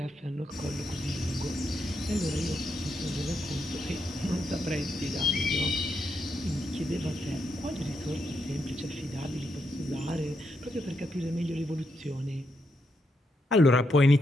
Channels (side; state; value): both; normal; correlation 0.81